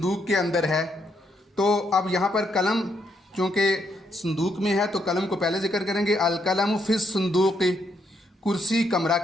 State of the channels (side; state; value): both; normal; correlation 0.76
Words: के अंदर है, तो अब यहाँ पर कलम चूँकि संदूक में है तो कलम को पहले ज़िक्र करेंगे, अल कलम फिस संदूकी। कुर्सी कमरा